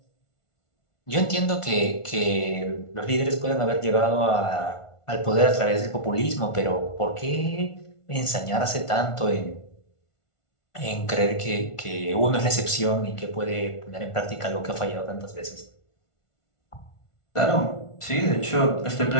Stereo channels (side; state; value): right; late; 1.4 ms